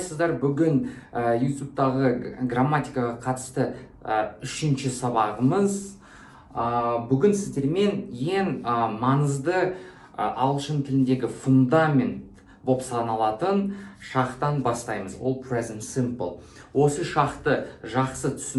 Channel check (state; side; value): identical; both; correlation 1.00